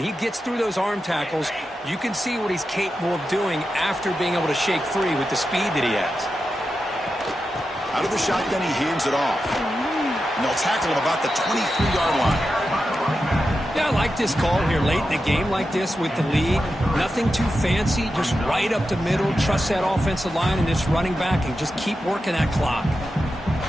he gets through those arm tackles. You can see what he's capable of doing after being able to shake free with the speed that he has. Out of the shotgun, he hands it off. And they'll tackle him about the 23-yard line. Yeah, I like this call here late in the game like this with the lead. Nothing too fancy, just right up the middle. Trust that offensive line and this running back and just keep working that clock.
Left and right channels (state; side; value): normal; both; correlation 0.90